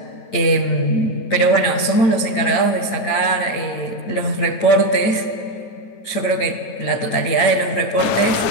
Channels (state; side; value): late; right; 9.3 ms